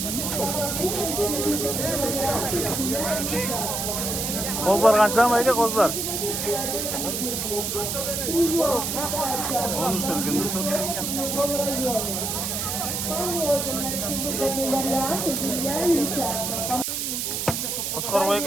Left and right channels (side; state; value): right; noise; hiss, 2 dB below the sound